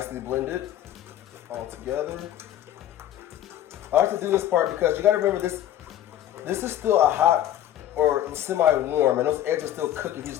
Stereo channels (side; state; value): right; quieter; 11.9 dB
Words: blended all together. I like to do this part because you gotta remember this is still a hot or semi-warm, and those eggs are still cooking. You